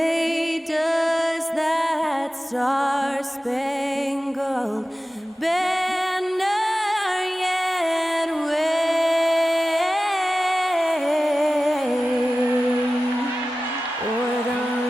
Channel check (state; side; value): normal; both; correlation 0.95